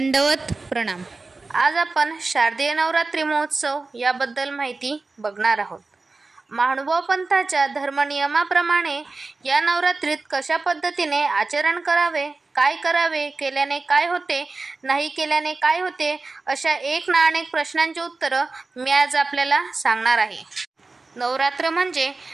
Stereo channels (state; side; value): quieter; left; 3.7 dB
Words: प्रणाम। आज आपण शारदीय नवरात्री महोत्सव याबद्दल माहिती बघणार आहोत। महानुभाव पंथाच्या धर्मनियमाप्रमाणे या नवरात्रीत कशा पद्धतीने आचरण करावे, काय करावे, केल्याने काय होते, नाही केल्याने काय होते, अशा एक ना अनेक प्रश्नांची उत्तरं मी आज आपल्याला सांगणार आहे। नवरात्र म्हणजे